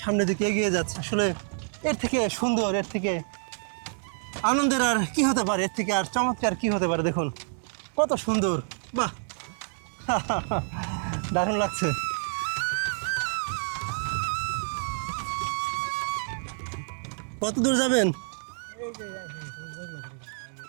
দিকে এগিয়ে যাচ্ছে। আসলে এর থেকে সুন্দর, এর থেকে আনন্দের আর কি হতে পারে, এর থেকে আর চমৎকার কি হতে পারে। দেখুন কত সুন্দর, বাহ দারুণ লাগছে। কত দূর যাবেন?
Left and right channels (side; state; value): left; silent; 59 dB below the other